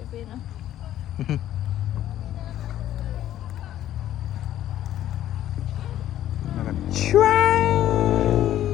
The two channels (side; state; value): right; quieter; 12.3 dB